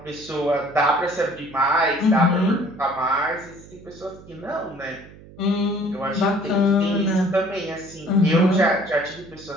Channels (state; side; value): noise; right; hum, 20 dB below the sound